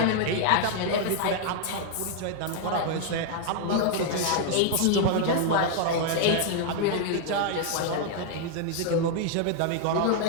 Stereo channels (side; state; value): both; different; correlation 0.00